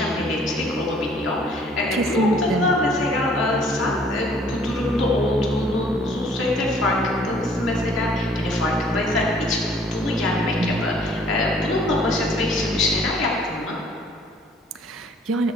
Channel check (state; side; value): normal; both; correlation 0.58